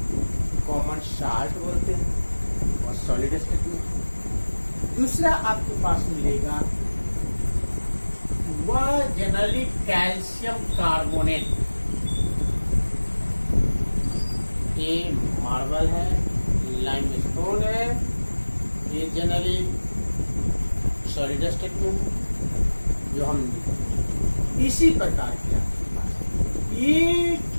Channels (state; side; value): inverted; both; correlation -1.00